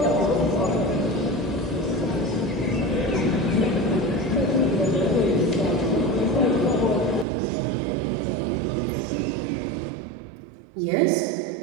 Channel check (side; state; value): left; drops out; at 7.2 s